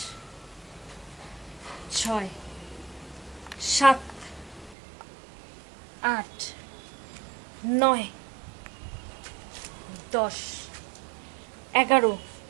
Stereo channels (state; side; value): drops out; left; at 4.8 s